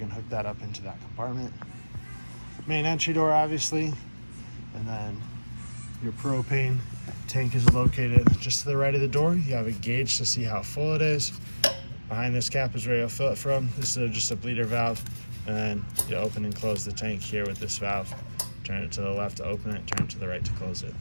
hook that up into that compartment. Main entry door, obviously, and then your propane tank is located just to the right of the door. You have a gauge to see how full it is. Behind this cap is where you'll fill it from. This is just a bleeder valve, and then you open and close the tank here with this valve. Turn it to the left to open it, turn it to the right to close it.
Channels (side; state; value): both; inverted; correlation -1.00